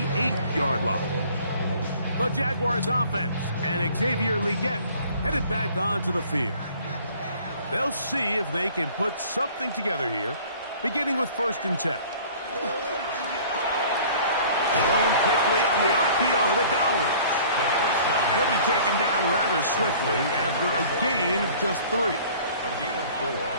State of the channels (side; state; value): both; inverted; correlation -0.50